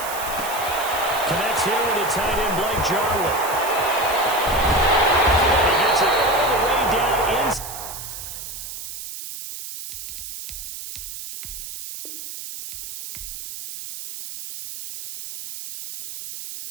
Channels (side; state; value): right; noise; hiss, 9 dB below the sound